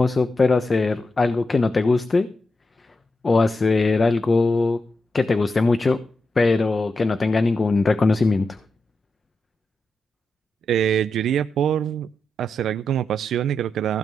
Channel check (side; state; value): both; normal; correlation 0.87